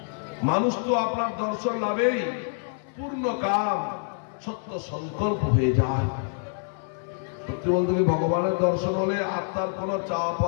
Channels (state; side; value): silent; right; 57 dB below the other